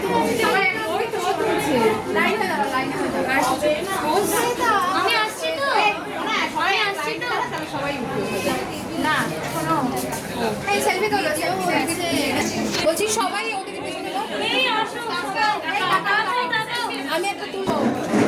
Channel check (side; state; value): both; identical; correlation 1.00